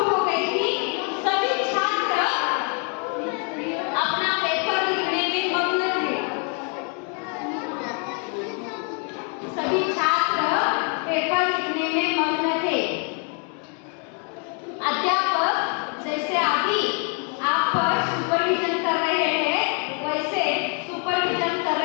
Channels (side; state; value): right; quieter; 37.2 dB